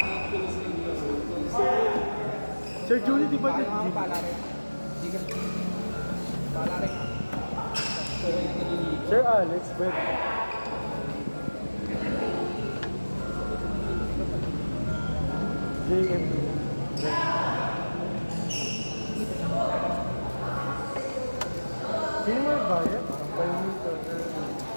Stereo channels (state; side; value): inverted; both; correlation -1.00